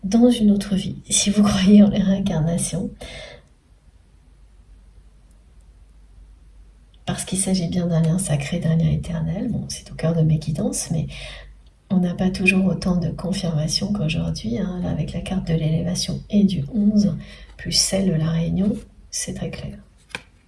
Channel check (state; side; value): identical; both; correlation 1.00